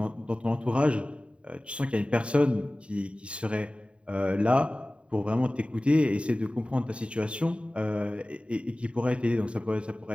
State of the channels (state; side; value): late; left; 0.059 ms